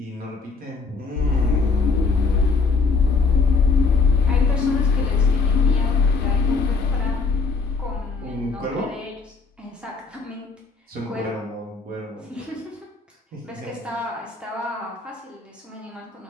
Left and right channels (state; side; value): quieter; right; 4.3 dB